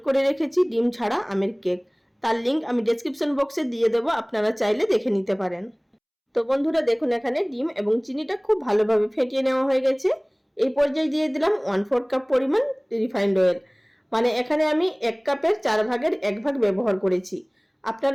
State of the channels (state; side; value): identical; both; correlation 1.00